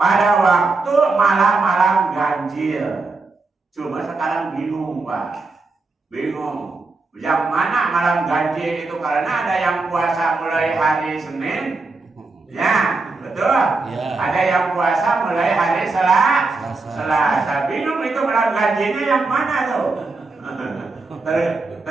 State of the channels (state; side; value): quieter; left; 3.7 dB